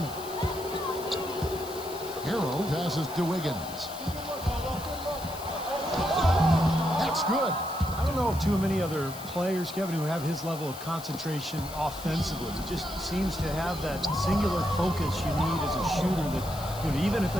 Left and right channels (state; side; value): noise; left; hiss, 15 dB below the sound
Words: Hero passes to Wiggins. That's good. I don't know of too many other players, Kevin, who have his level of concentration offensively. He just seems to have that singular focus you need as a shooter that, you know, even if